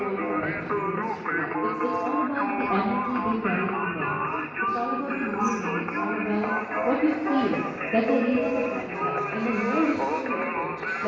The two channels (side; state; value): both; identical; correlation 1.00